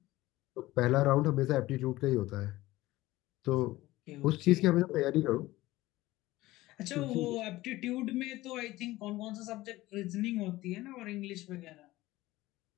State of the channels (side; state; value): right; quieter; 17.8 dB